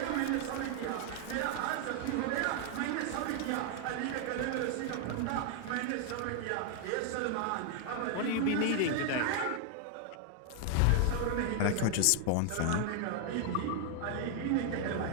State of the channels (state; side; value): different; both; correlation 0.00